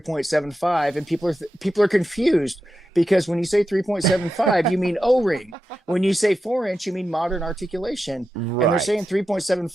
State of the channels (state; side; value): normal; both; correlation 0.89